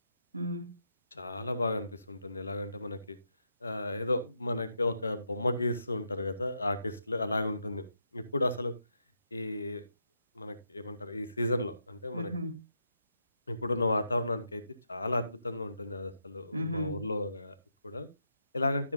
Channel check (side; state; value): both; inverted; correlation -0.83